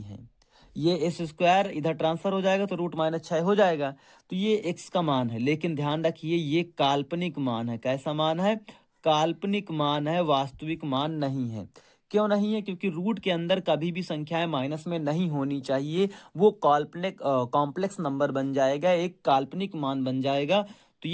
है। ये s² इधर ट्रांसफर हो जाएगा तो √-6 हो जाएगा। तो ये x का मान है, लेकिन ध्यान रखिए ये काल्पनिक मान है। कैसा मान है? काल्पनिक मान है, वास्तविक मान नहीं है। क्यों नहीं है? क्योंकि रूट के अंदर कभी भी संख्याएं माइनस में नहीं होनी चाहिए। वो काल्पनिक कॉम्प्लेक्स नंबर बन जाएगा, एक काल्पनिक मान बन जाएगा। तो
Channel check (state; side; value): identical; both; correlation 1.00